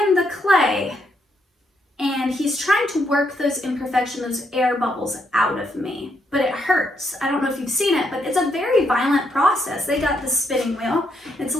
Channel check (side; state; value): both; normal; correlation 0.77